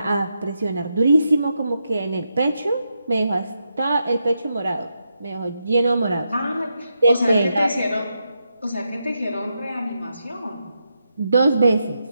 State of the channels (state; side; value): inverted; both; correlation -0.84